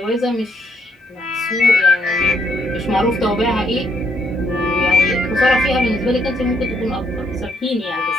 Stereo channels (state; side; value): normal; both; correlation 0.72